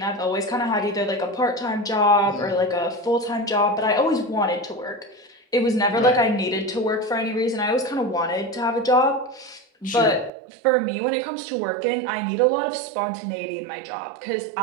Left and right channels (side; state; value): left; drops out; at 10.3 s